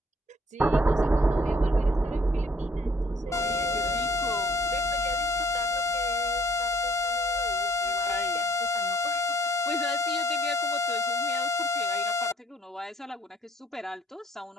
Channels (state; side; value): normal; both; correlation 0.62